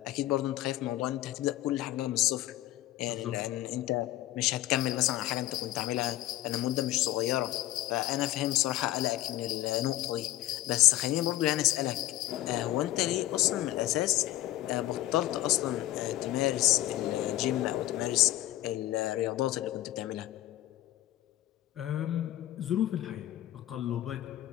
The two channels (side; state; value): right; quieter; 15.2 dB